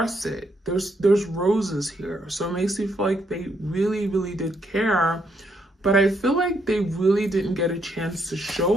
it. There's roses here. So it makes me feel like they really did care, but I feel like they really didn't get a chance to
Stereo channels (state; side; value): normal; both; correlation 0.75